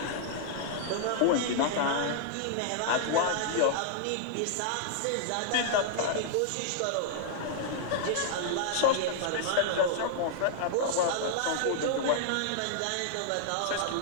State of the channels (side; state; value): both; different; correlation -0.01